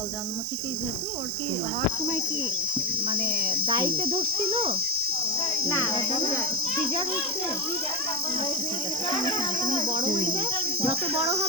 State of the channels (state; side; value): normal; both; correlation 0.13